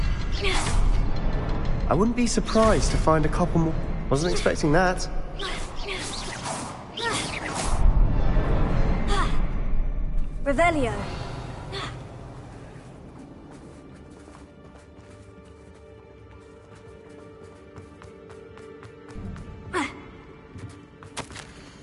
I wouldn't be surprised to find a couple more. Wasn't expecting that. Revelio.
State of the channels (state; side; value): identical; both; correlation 1.00